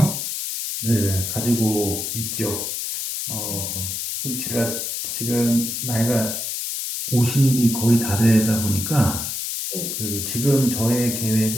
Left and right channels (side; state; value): left; noise; hiss, 3 dB below the sound